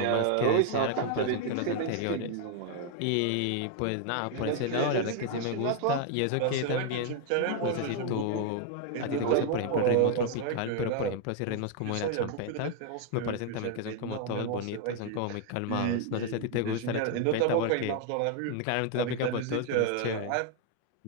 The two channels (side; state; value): both; different; correlation 0.00